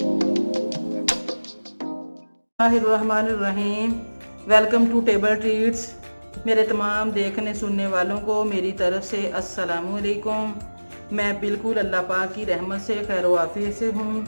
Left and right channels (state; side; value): inverted; both; correlation -1.00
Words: Welcome to Table Treats. मेरे तमाम देखने सुनने वालों को मेरी तरफ से अस्सलामुअलैकुम। मैं बिल्कुल अल्लाह पाक की रहमत से खैर वाफियत से हूँ।